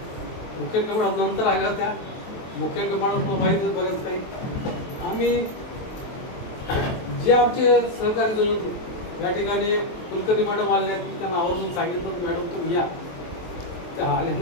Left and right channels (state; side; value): late; right; 23 ms